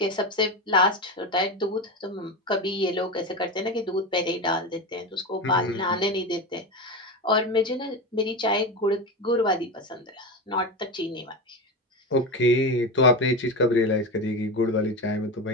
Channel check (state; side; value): normal; both; correlation 0.20